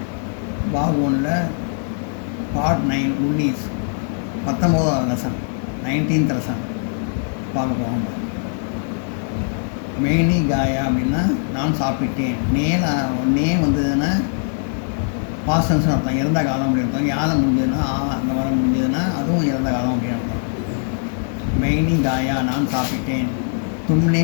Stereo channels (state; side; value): silent; right; 65 dB below the other